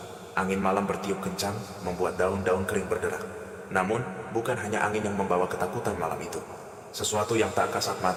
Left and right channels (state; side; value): identical; both; correlation 1.00